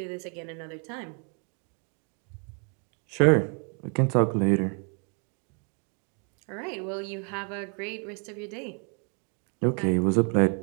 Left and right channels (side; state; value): left; quieter; 38.4 dB